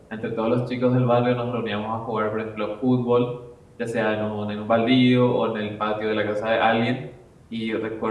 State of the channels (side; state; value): both; identical; correlation 1.00